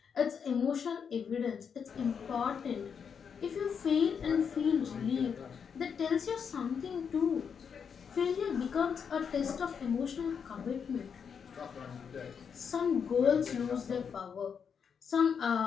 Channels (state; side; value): quieter; right; 6.8 dB